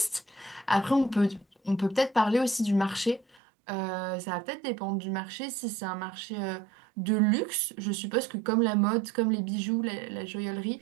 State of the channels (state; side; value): drops out; left; at 3.4 s